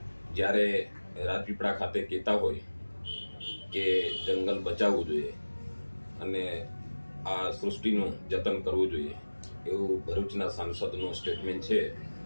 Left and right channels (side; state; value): both; inverted; correlation -1.00